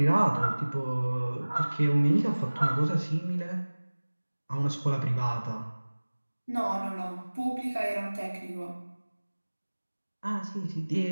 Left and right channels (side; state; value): both; inverted; correlation -1.00